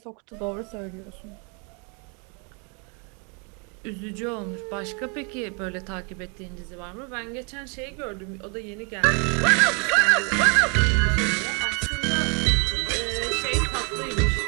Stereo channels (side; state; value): left; quieter; 35.6 dB